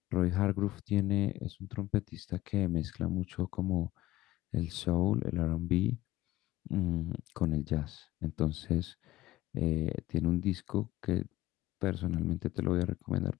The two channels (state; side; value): quieter; right; 16.6 dB